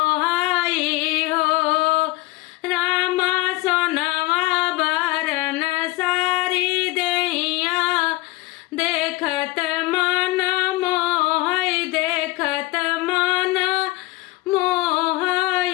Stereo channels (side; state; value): right; quieter; 20.2 dB